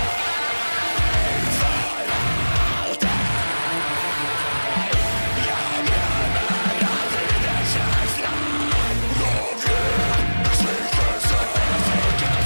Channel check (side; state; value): both; inverted; correlation -1.00